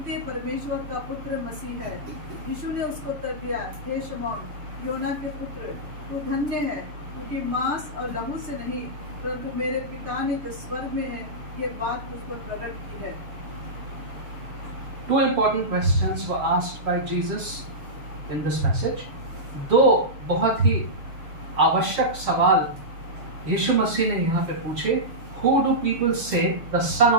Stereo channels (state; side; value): late; left; 6.9 ms